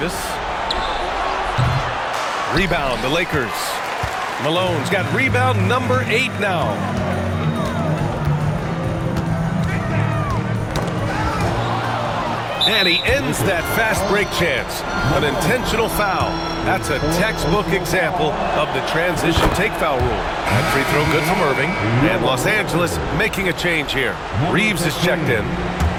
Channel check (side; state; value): both; identical; correlation 1.00